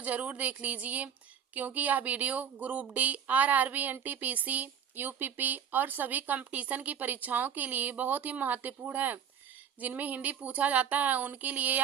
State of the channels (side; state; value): left; quieter; 8.1 dB